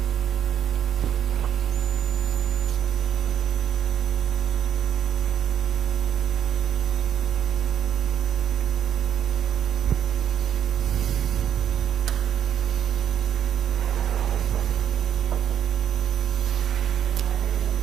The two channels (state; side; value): quieter; left; 9.6 dB